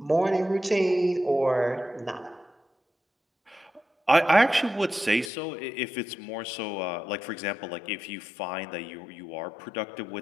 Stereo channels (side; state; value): right; drops out; at 5.3 s